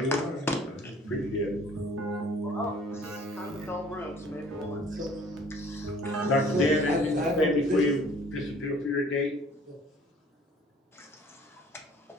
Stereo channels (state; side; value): normal; both; correlation 0.53